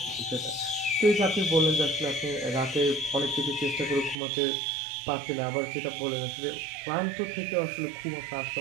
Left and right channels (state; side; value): drops out; left; at 4.2 s